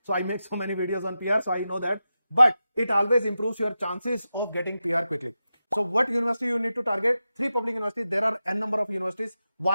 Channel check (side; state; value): both; inverted; correlation -0.91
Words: So I make so many videos on PR. So I know that. But it always improves your chances of getting PR quickly. So what university you need to target? 3 public universities. There are n number of universities.